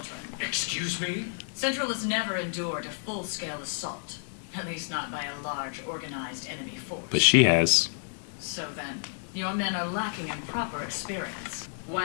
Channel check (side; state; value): right; silent; digital silence